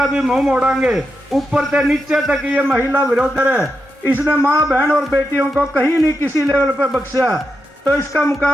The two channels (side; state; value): both; normal; correlation 0.86